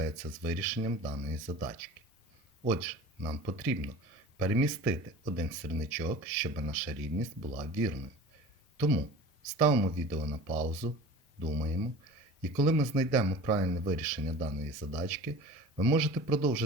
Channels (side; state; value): both; normal; correlation 0.39